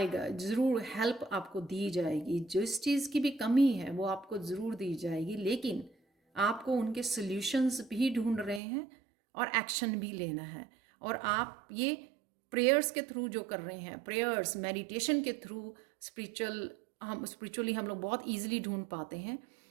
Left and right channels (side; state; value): left; drops out; at 8.6 s